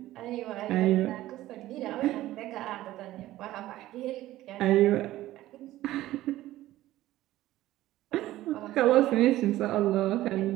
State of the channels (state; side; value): quieter; left; 15.4 dB